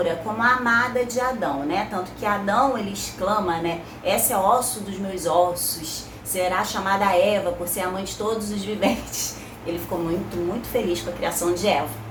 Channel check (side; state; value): both; identical; correlation 1.00